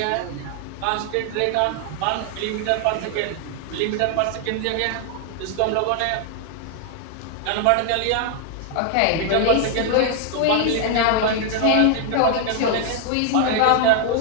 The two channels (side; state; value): both; different; correlation 0.00